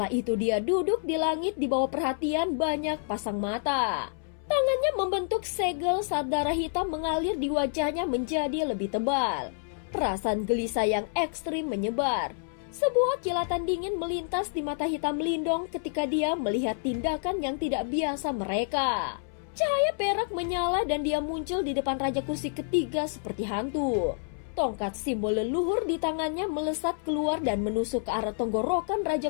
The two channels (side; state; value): right; silent; 59 dB below the other